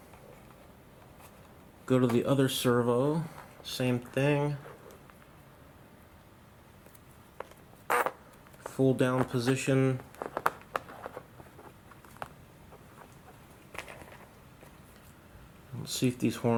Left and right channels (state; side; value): identical; both; correlation 1.00